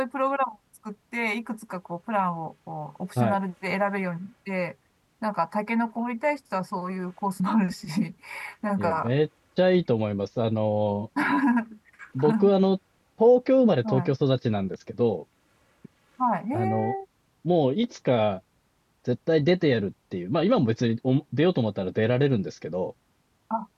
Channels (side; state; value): both; identical; correlation 1.00